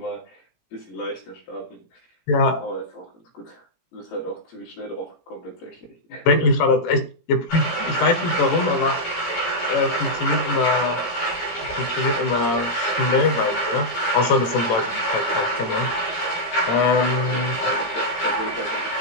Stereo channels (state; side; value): late; right; 17 ms